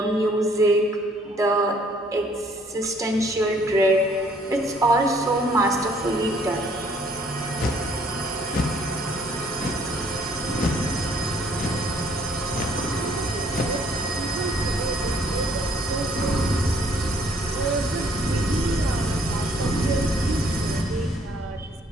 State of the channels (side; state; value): both; normal; correlation 0.63